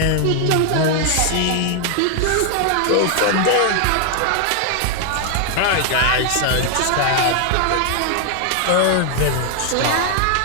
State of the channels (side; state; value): both; different; correlation 0.00